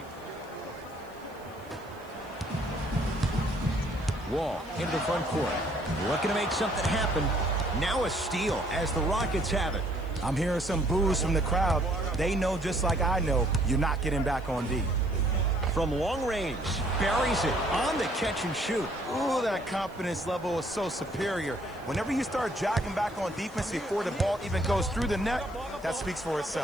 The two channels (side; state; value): right; noise; hiss, 28 dB below the sound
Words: Wall into the front court. Looking to make something happen. Now a steal as the Rockets have it. I'm hearing some boos from the crowd. They know just like I know you're not getting back on D. From long range, buries it on the catch and shoot. Ooh, that confidence level is so superior. Whenever you start jogging back on defense before the ball even goes through the net, that speaks for